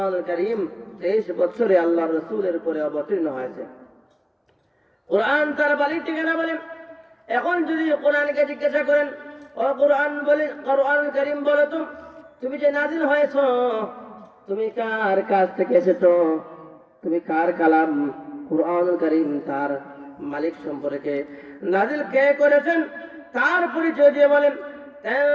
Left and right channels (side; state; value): both; identical; correlation 1.00